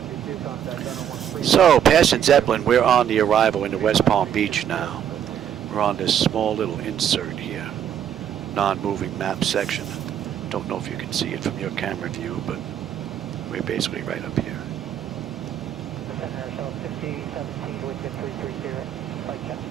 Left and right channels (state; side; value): quieter; left; 9.5 dB